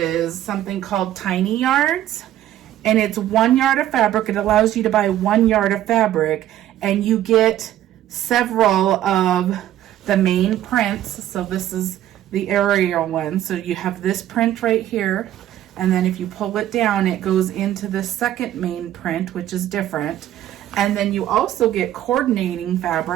something called Tiny Yards, and it's 1 yard of fabric. It allows you to buy 1 yard of fabric, and you get several of the main prints. So this is the aerial one. So you have this print right here. And then if you pull it down, it goes into the second main print, which is different. And then you also get coordinating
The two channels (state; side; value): quieter; left; 12.5 dB